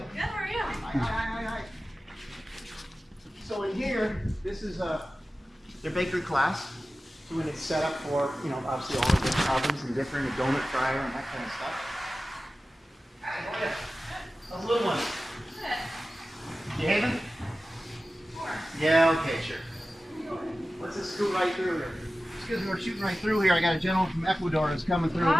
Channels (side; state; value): both; normal; correlation 0.95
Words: Good, how are you? Hi. So in here, this is their bakery class. So when it's set up for, you know, obviously all the different ovens and different, a donut fryer and that kind of stuff. Hi, how are you? How's the little one? You having? Yeah, okay, sure. Let's just scoot right through here. Excuse me, we're shooting right through here. I got a gentleman from Ecuador that's coming through.